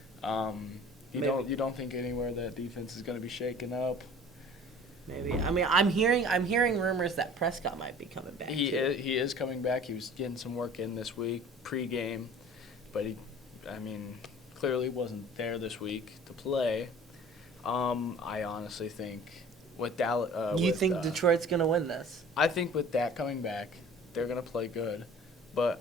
you don't think anywhere that defense is going to be shaken up. Maybe. I mean, I'm hearing rumors that Prescott might be coming back. He is coming back. He was getting some work in this week pregame, but he clearly wasn't there this week to play. I honestly think with Dallas, you think Detroit's gonna win this? I think with that coming back, they're gonna play good, but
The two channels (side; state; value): both; normal; correlation 0.46